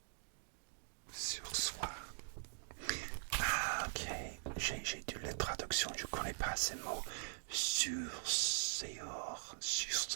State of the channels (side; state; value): left; silent; digital silence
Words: Ah, ok. J'ai dû la traduction, je connais pas ces mots. Sursoir.